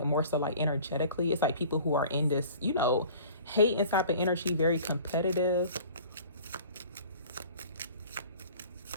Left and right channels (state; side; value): inverted; both; correlation -0.46